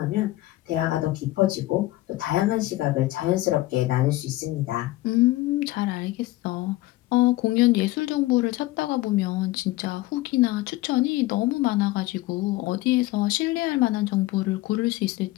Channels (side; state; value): right; quieter; 17.9 dB